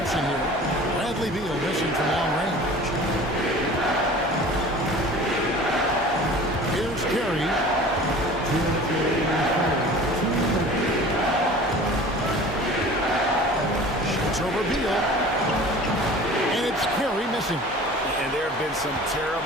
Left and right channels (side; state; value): both; normal; correlation 0.42